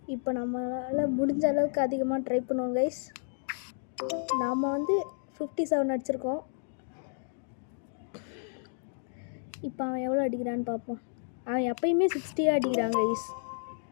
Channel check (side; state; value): right; silent; digital silence